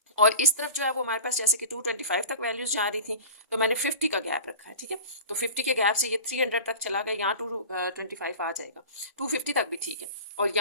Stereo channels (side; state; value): both; inverted; correlation -0.37